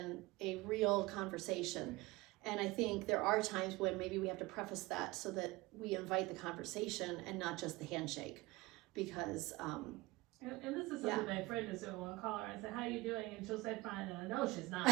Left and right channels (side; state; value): left; quieter; 21.2 dB